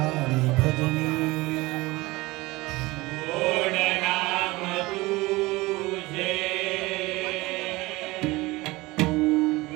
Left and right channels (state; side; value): quieter; left; 21.3 dB